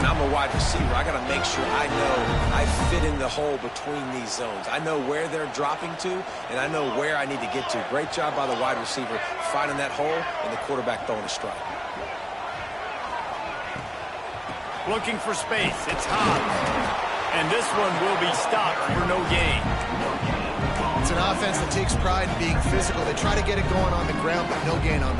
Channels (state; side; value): identical; both; correlation 1.00